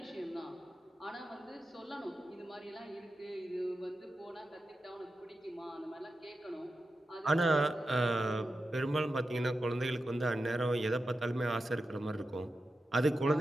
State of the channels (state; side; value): normal; both; correlation 0.91